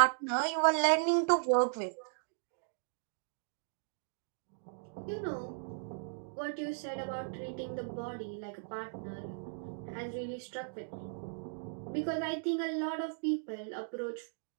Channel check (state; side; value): silent; left; digital silence